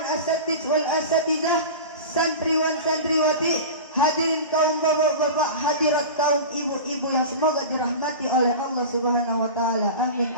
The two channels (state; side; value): inverted; both; correlation -0.30